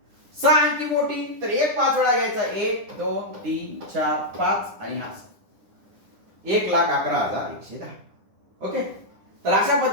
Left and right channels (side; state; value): left; late; 10 ms